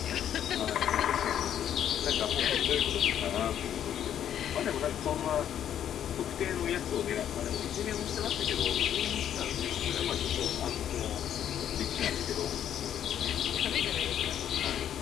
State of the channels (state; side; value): quieter; right; 10.0 dB